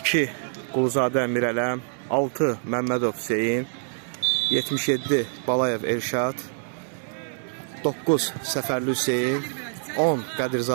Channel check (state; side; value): silent; left; digital silence